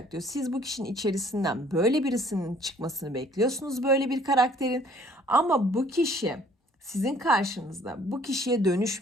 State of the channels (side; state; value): both; normal; correlation 0.57